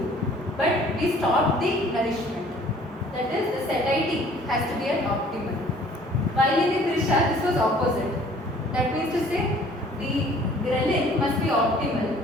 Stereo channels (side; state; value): both; normal; correlation 0.54